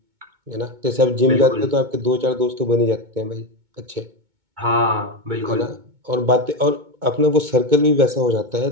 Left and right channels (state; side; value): late; left; 2.2 ms